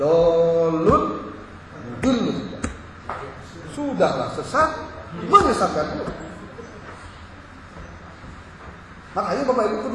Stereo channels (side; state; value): both; identical; correlation 1.00